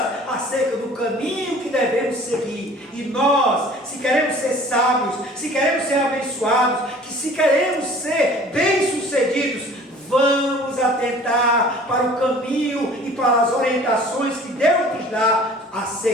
acerca do caminho que devemos seguir. E nós, se queremos ser sábios, se queremos ser abençoados, se queremos ser bem-sucedidos, vamos atentar para o caminho e para as orientações que Deus nos dá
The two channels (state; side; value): normal; both; correlation 0.48